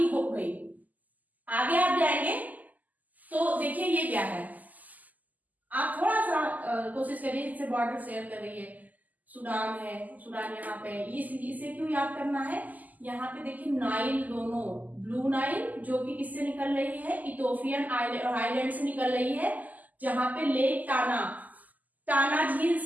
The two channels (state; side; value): late; left; 0.080 ms